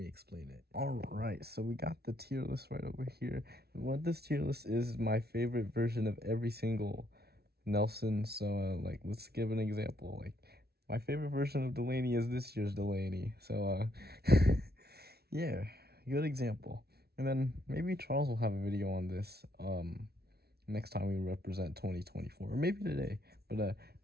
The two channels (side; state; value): left; late; 0.46 ms